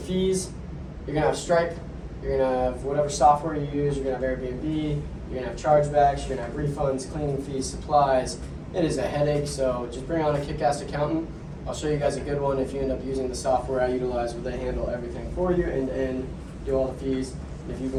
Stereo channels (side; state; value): both; identical; correlation 1.00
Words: You're gonna have Stripe, you're gonna have whatever software you use, you're gonna have Airbnb, you're gonna have chargebacks, you're gonna have refunds, cleaning fees, supplies. It is a headache, so just bring on a kick-ass accountant. I'll show you guys a good one if you end up using the software I utilize where they handle everything for you and do all the fees. And if you can